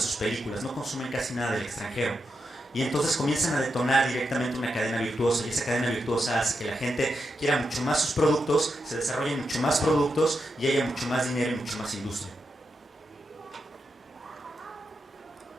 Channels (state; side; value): normal; both; correlation 0.86